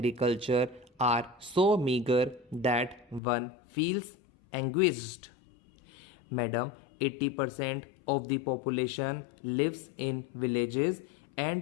are so meager that one feels anguished. Madam, 80% of the population lives in villages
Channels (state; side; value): drops out; right; at 3.2 s